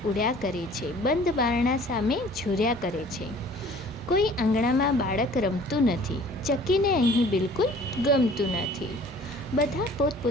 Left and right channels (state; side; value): normal; both; correlation 0.50